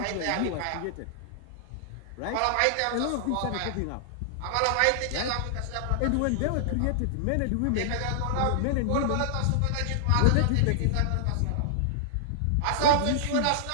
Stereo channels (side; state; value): both; different; correlation -0.01